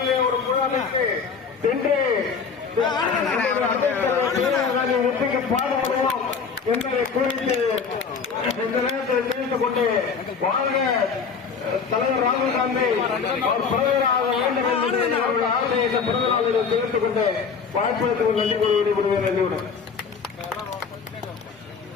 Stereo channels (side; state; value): right; quieter; 5.7 dB